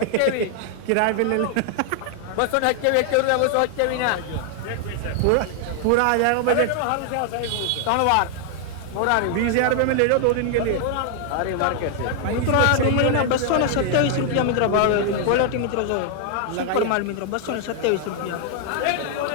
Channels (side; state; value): both; different; correlation 0.00